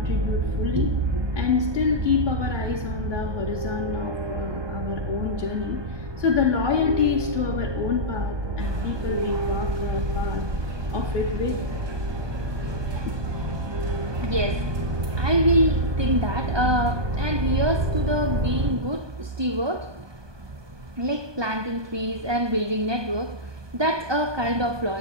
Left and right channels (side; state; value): left; late; 1.2 ms